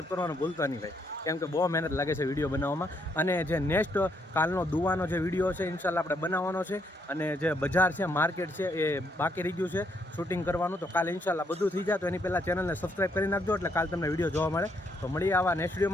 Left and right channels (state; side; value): normal; both; correlation 0.74